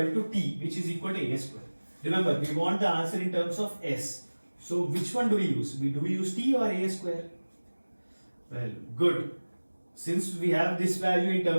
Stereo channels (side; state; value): both; inverted; correlation -1.00